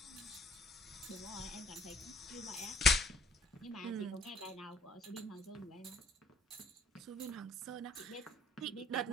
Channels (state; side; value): normal; both; correlation 0.60